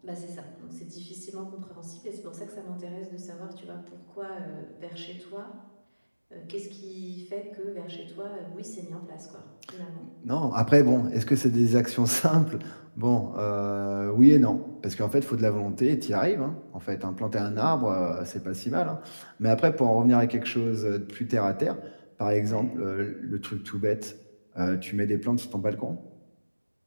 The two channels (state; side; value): inverted; both; correlation -1.00